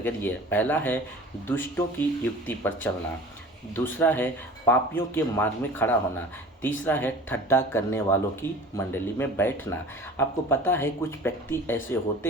है। पहला है दुष्टों की युक्ति पर चलना, दूसरा है पापियों के मार्ग में खड़ा होना, तीसरा है ठट्ठा करने वालों की मंडली में बैठना। आपको पता है कुछ व्यक्ति ऐसे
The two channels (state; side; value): normal; both; correlation 0.42